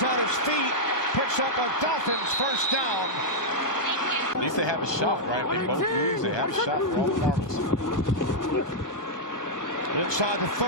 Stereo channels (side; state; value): right; late; 1.2 ms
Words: on his feet. Picks up a Dolphins first down. At least they have a shot, right? If they both lose, they have a shot for all the marbles. Inside the